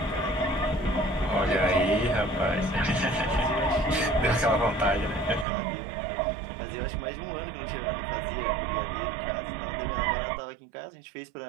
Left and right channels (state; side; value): drops out; left; at 5.5 s